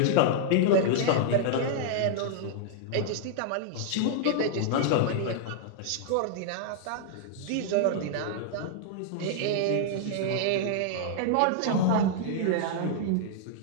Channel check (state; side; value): different; both; correlation -0.01